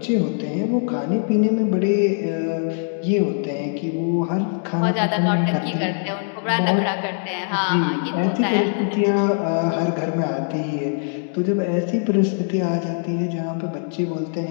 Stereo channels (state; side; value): silent; right; 64 dB below the other